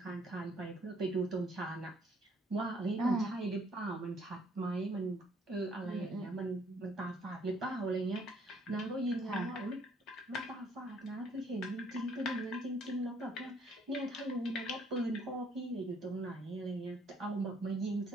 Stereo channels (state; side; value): normal; both; correlation 0.64